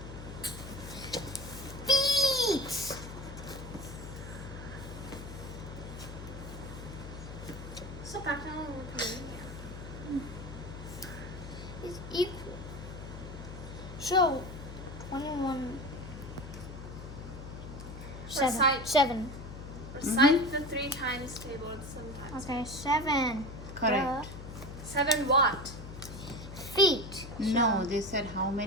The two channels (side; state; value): left; noise; hum, 11 dB below the sound